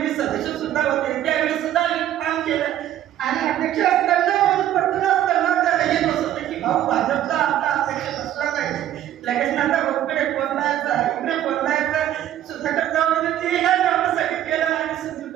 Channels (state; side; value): quieter; left; 11.9 dB